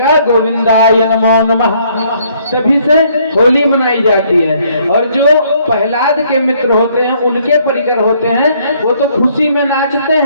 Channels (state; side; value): inverted; both; correlation -0.65